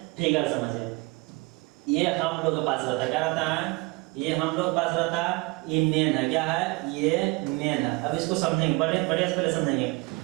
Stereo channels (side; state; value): left; quieter; 25.0 dB